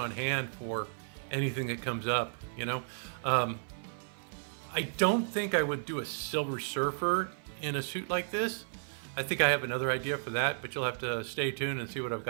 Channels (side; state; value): left; silent; 55 dB below the other